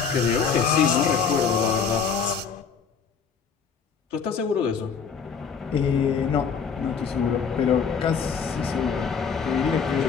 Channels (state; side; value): quieter; right; 6.2 dB